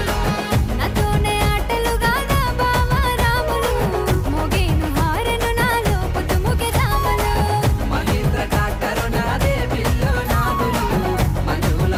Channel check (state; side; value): identical; both; correlation 1.00